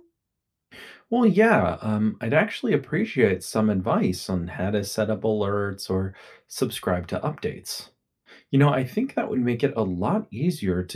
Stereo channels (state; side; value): identical; both; correlation 1.00